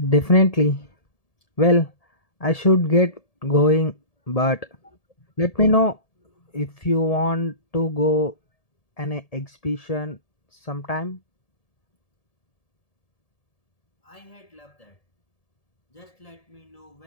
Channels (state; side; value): late; right; 1.7 ms